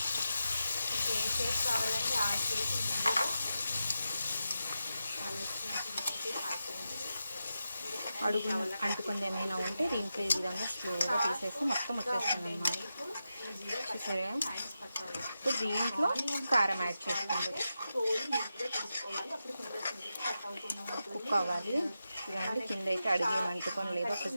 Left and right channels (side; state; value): both; inverted; correlation -0.89